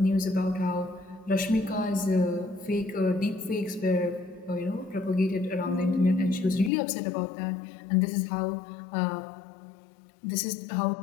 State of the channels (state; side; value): drops out; right; at 6.7 s